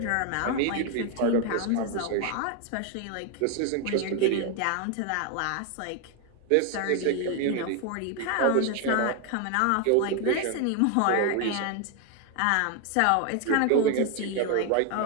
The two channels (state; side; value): different; both; correlation 0.01